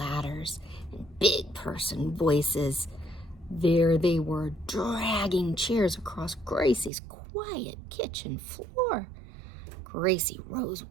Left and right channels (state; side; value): drops out; left; at 6.9 s